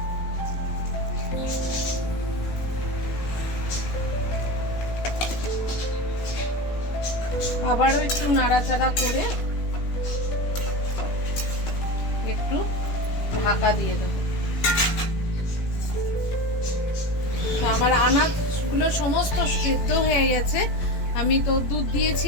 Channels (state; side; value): late; right; 17 ms